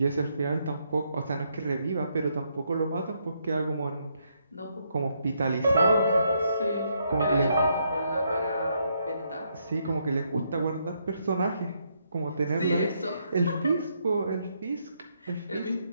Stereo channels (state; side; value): inverted; both; correlation -0.76